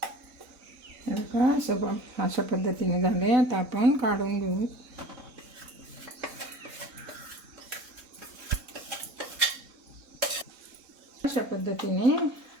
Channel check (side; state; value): left; late; 4.0 ms